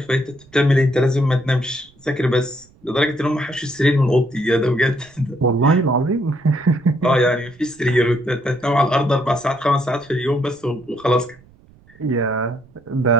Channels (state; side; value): noise; right; rumble, 28 dB below the sound